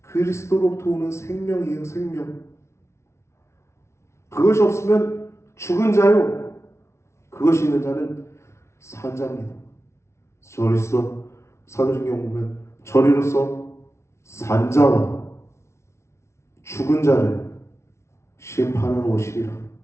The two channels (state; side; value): late; right; 0.13 ms